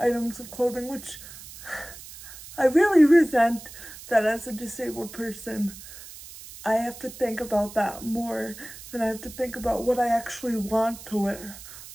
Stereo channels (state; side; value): noise; right; hiss, 15 dB below the sound